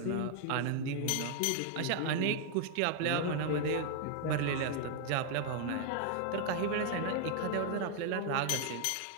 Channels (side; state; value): both; different; correlation 0.00